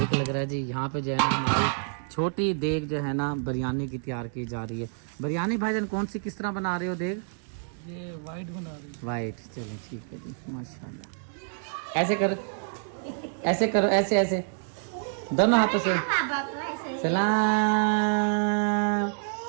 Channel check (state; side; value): silent; left; digital silence